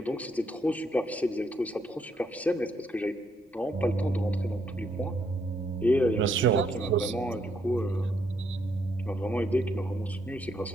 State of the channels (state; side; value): normal; both; correlation 0.74